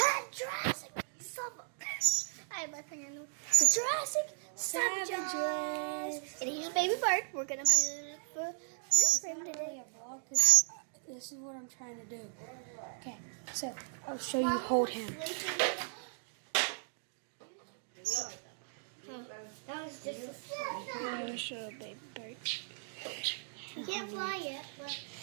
Jurassic Summer. I have my finger in the Jurassic Savages. And here's Baby Bird. We're gonna be for him today. This is what I'm trying to do. Okay, so I'll show you hold him. That was just a I'll show Baby Bird. He can't fly yet, but.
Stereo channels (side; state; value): left; silent; digital silence